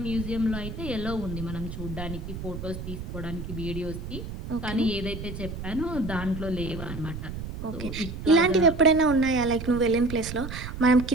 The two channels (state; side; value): noise; right; rumble, 8 dB below the sound